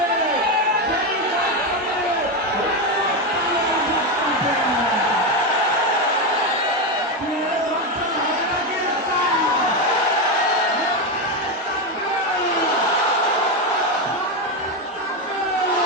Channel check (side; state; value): both; normal; correlation 0.11